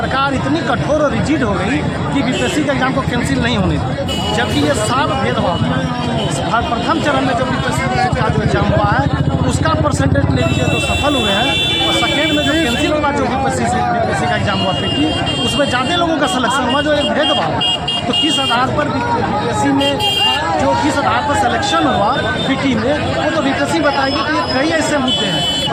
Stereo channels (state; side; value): identical; both; correlation 1.00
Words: इतनी कठोर और रिजिड हो गई कि बीपीएससी का एग्जाम को कैंसिल नहीं होने दी, जबकि ये साफ भेदभाव है। प्रथम चरण में जो बीपीएससी का जो एग्जाम हुआ है उसका परसेंटेज ले लीजिए तो सफल हुए हैं, और सेकेंड में जो कैंसिल हुआ जो बीपीएससी का एग्जाम हुआ पीटी, उसमें ज़्यादा लोगों का सिलेक्शन हुआ, जो एक भेदभाव। तो किस आधार पर बीपीएससी में जो किस आधार पर सिलेक्शन हुआ पीटी में, वो तो बीपीएससी बताएगी कि ये कई ऐसे मुद्दे हैं।